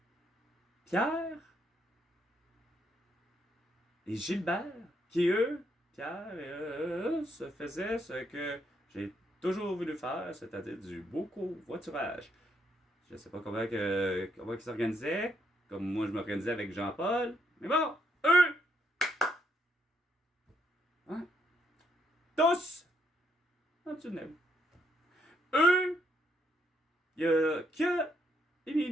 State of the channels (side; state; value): both; normal; correlation 0.74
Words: Pierre et Gilbert, qui eux, Pierre et eux, se faisaient ce que j'ai toujours voulu faire, c'est-à-dire du beau covoiturage. Je ne sais pas comment ils s'organisaient, comme moi je m'organisais avec Jean-Paul, mais bon, eux, hein, tous, dans le tunnel. Eux, il n'y a que